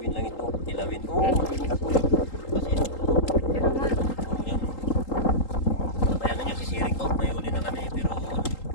lang ito. Kilawin. Oo, magiging ito. Kasi ito. Pero nga. Oh, yan. Kaya na nyo, sisiring ko. May huli na kami. Pero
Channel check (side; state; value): right; late; 3.8 ms